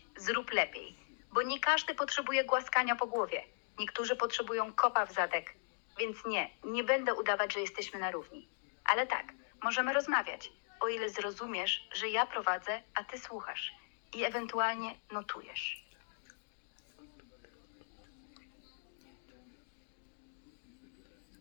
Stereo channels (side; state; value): right; silent; digital silence